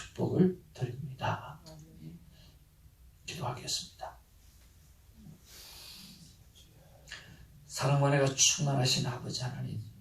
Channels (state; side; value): identical; both; correlation 1.00